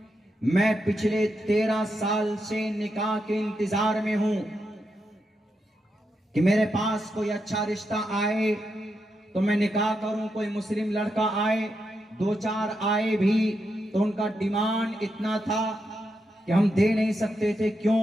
मैं पिछले 13 साल से निकाह के इंतजार में हूं। कि मेरे पास कोई अच्छा रिश्ता आए तो मैं निकाह करूं, कोई मुस्लिम लड़का आए, 2-4 आए भी तो उनका डिमांड इतना था कि हम दे नहीं सकते थे। क्यों?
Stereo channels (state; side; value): normal; both; correlation 0.84